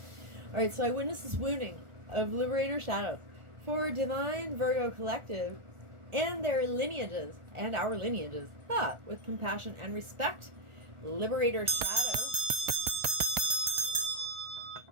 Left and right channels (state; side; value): late; left; 1.4 ms